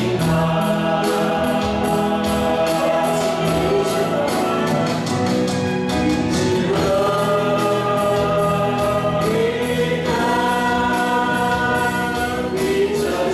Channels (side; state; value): both; identical; correlation 1.00